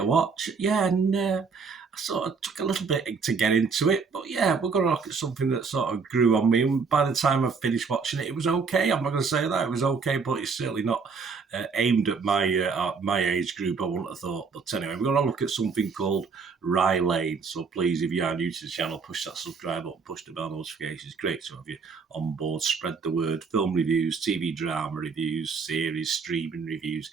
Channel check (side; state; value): left; quieter; 5.2 dB